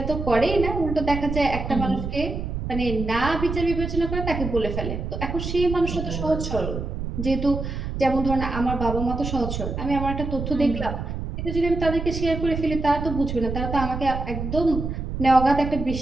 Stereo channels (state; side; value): noise; right; rumble, 5 dB below the sound